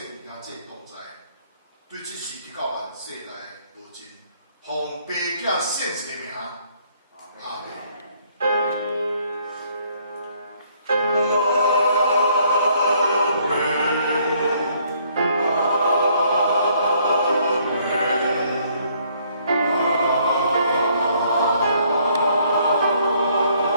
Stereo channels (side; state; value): both; inverted; correlation -0.65